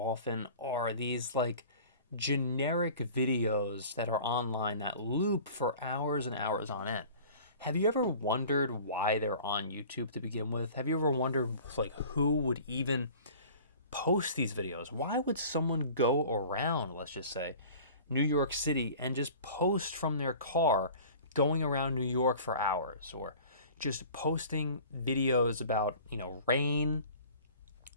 are these like generic videos that are online that loop for hours and hours on end. Have you ever wondered why they're on YouTube to begin with? Have you ever wondered like who would even post these videos? Why would someone go around, let's just say, New York City and just post from their car going around New York for hours, or just posting videos about, rain,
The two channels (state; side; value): inverted; both; correlation -0.43